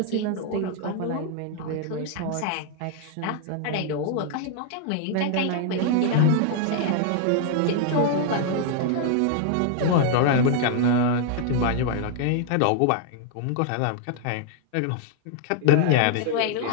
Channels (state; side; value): different; both; correlation 0.00